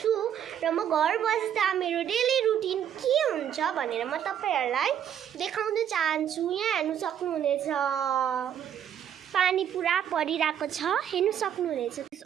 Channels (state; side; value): quieter; left; 9.5 dB